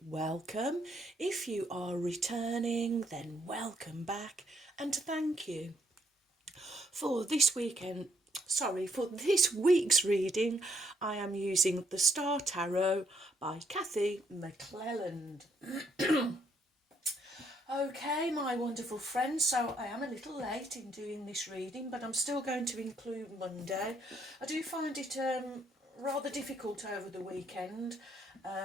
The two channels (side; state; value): both; normal; correlation 0.71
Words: welcome. If you are returning, then welcome back and thank you. For this week's reading, I am using the Star Tarot by Kathy McClelland. Okay, my wonderful friends, so I am a little late in doing this reading, but I'm still going to include Monday. I do find it rather difficult over the weekend.